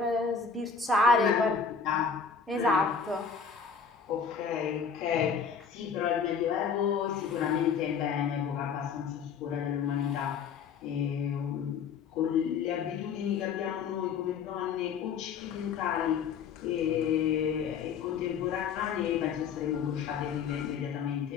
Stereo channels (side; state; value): right; quieter; 6.1 dB